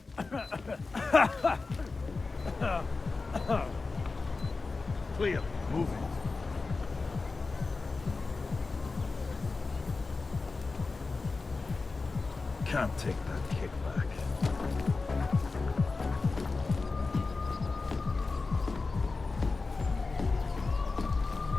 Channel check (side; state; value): right; quieter; 3.9 dB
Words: Clear. Move it. Can't take that kickback.